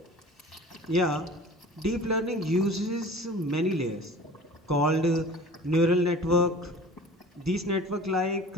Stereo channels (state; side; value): normal; both; correlation 0.42